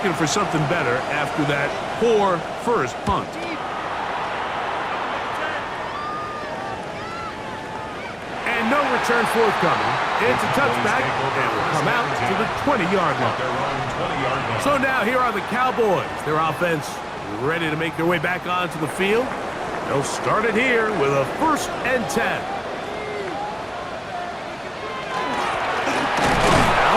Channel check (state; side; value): identical; both; correlation 1.00